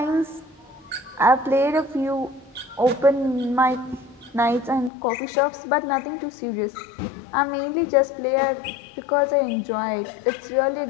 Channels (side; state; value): right; drops out; at 4.9 s